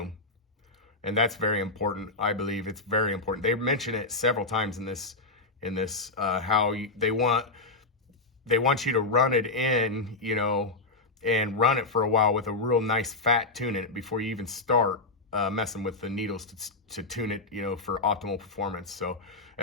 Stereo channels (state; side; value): quieter; right; 3.3 dB